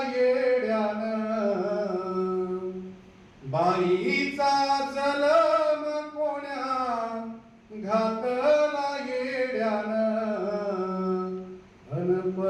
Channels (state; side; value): identical; both; correlation 1.00